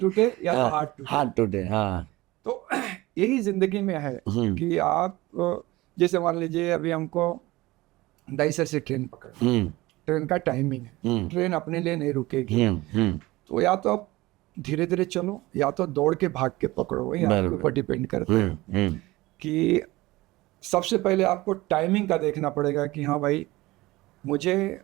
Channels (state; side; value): quieter; left; 19.5 dB